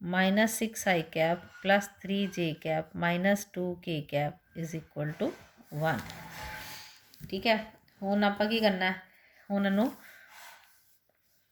minus 6 i cap plus 3 j cap minus 2 k cap is equal to 1, ठीक है। हुण आपां की करना है, हुण इनू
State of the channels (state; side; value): identical; both; correlation 1.00